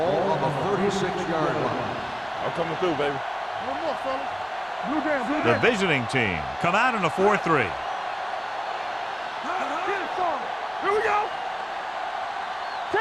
on the 36-yard line. I'm coming through, baby. One more, fellas. Blue down, blue The down. visiting team come out in a 4-3. Here we go.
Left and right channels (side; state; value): both; identical; correlation 1.00